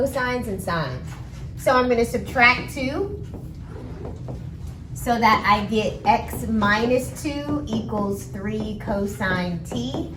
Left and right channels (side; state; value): both; identical; correlation 1.00